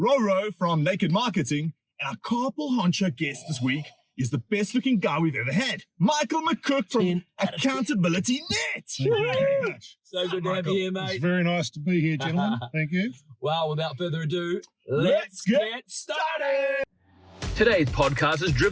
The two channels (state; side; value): identical; both; correlation 1.00